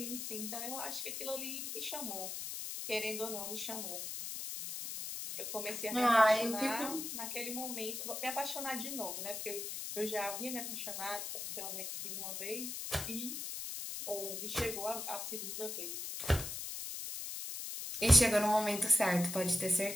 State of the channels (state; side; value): noise; left; hiss, 5 dB below the sound